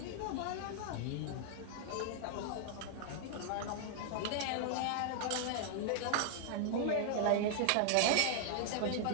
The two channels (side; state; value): both; different; correlation -0.01